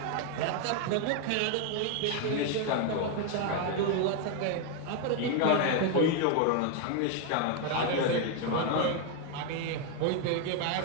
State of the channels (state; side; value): different; both; correlation 0.01